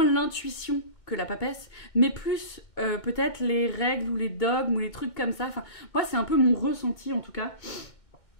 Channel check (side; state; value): right; late; 2.2 ms